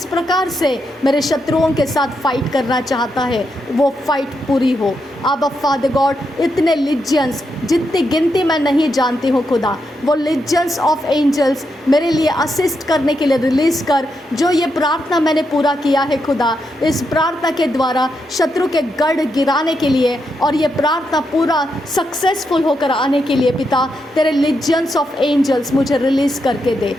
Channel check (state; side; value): normal; both; correlation 0.83